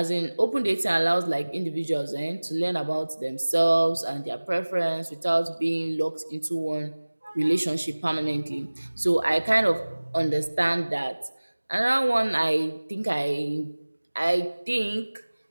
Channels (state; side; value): inverted; both; correlation -1.00